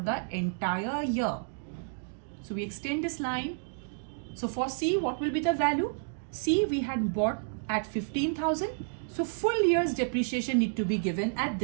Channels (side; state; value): left; silent; digital silence